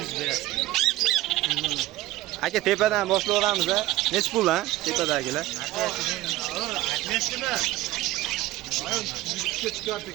berasiz. Aka, tepadan boshlaveramiz-a. Nech pul ha? Tepadagilar. Aytmaysizmi? 100 ga chiqyapti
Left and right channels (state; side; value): quieter; left; 16.9 dB